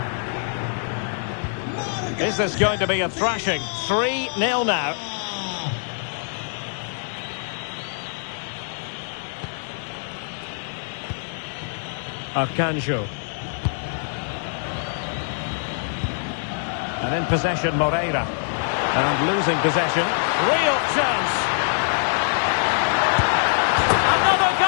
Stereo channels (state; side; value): silent; right; digital silence